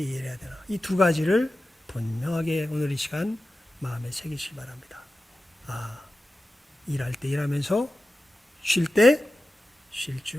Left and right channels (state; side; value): normal; both; correlation 0.93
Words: 일해야 되나? 이 두 가지를 분명하게 오늘 이 시간 마음에 새기시기 바랍니다. 일할 때 일하면서 쉴 때 쉴